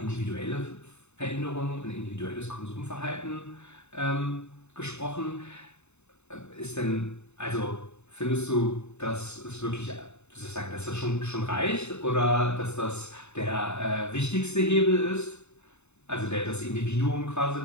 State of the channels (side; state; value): right; late; 0.82 ms